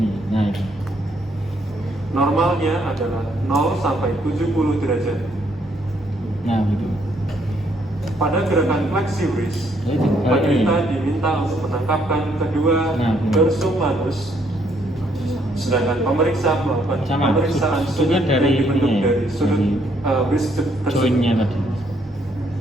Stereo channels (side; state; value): both; normal; correlation 0.70